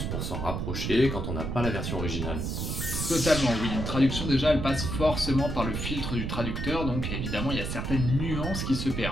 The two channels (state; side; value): noise; right; rumble, 3 dB below the sound